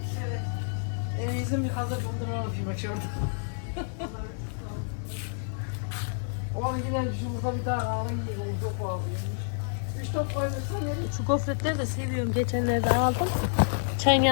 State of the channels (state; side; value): silent; right; 59 dB below the other